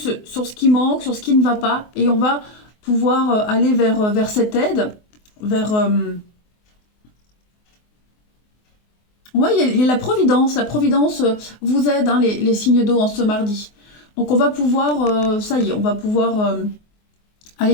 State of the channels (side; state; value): right; late; 24 ms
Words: sur ce qui manque, sur ce qui ne va pas. Et on va pouvoir aller vers cette aide, vers... Oui, il y a la Providence. La Providence vous aide, hein, les signes d'eau en ce mardi. Donc on va pouvoir, ça y est, on va pouvoir